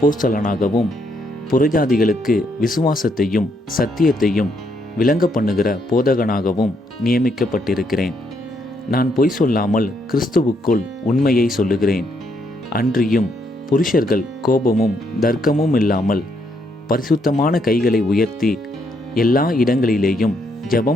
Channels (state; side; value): normal; both; correlation 0.74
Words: புறஜாதிகளுக்கு விசுவாசத்தையும் சத்தியத்தையும் விளங்க பண்ணுகிற போதகனாகவும் நியமிக்கப்பட்டிருக்கிறேன். நான் பொய் சொல்லாமல் கிறிஸ்துவுக்குள் உண்மையை சொல்லுகிறேன். அன்றியும் புருஷர்கள் கோபமும் தர்க்கமும் இல்லாமல் பரிசுத்தமான கைகளை உயர்த்தி எல்லா இடங்களிலேயும்